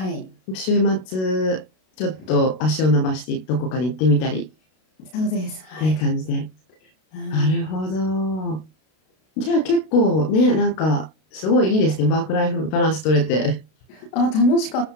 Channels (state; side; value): late; right; 32 ms